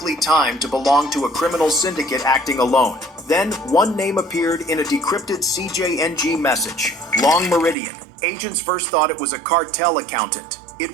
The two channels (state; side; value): drops out; left; at 7.8 s